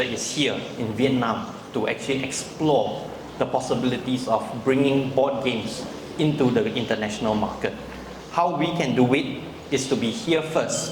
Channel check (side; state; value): both; identical; correlation 1.00